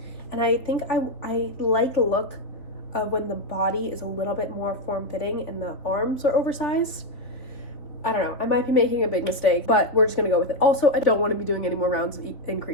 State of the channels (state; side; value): late; right; 3.4 ms